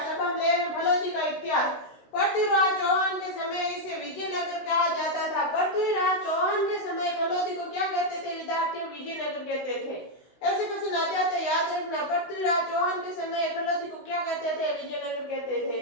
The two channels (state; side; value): late; right; 16 ms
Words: अब हम ले रहे हैं फलोदी का इतिहास। पृथ्वीराज चौहान के समय इसे विजयनगर कहा जाता था। पृथ्वीराज चौहान के समय फलोदी को क्या कहते थे विद्यार्थियों? विजयनगर कहते थे। ऐसे क्वेश्चन आ जाते, याद रखना। पृथ्वीराज चौहान के समय फलोदी को क्या कहते थे? विजयनगर कहते थे।